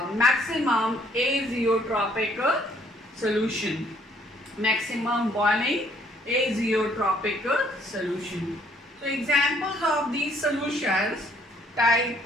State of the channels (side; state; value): both; normal; correlation 0.64